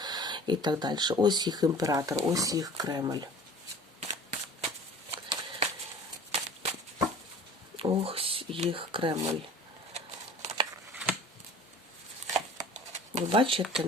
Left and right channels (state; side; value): normal; both; correlation 0.44